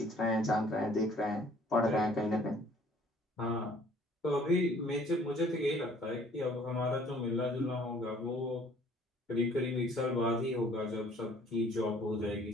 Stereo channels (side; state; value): both; normal; correlation 0.57